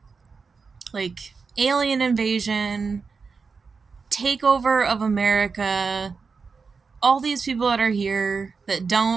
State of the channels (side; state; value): left; quieter; 5.0 dB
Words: like alien invasion, takeover of America, all these people that are here that